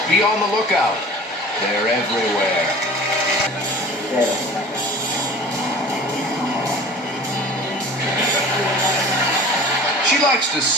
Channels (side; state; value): both; normal; correlation 0.42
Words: Be on the lookout. They're everywhere. She likes to